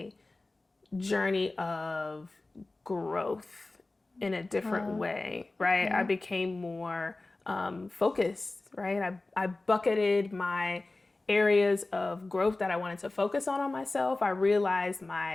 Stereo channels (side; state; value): right; quieter; 3.1 dB